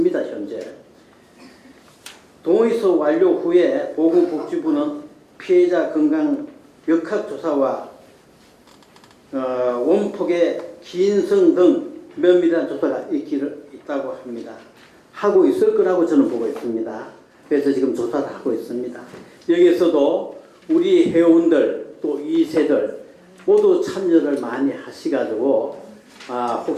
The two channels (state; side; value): identical; both; correlation 1.00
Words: 현재 동의서 완료 후에 보건복지부는 피해자 건강 역학조사와 원폭의 기인성 등 면밀한 조사가 있다고 합니다. 하고 있을 거라고 저는 보고 있습니다. 그래서 지금 조사를 하고 있습니다. 여기에서도 우리 회원들 또 2세들 모두 참여를 많이 하시가지고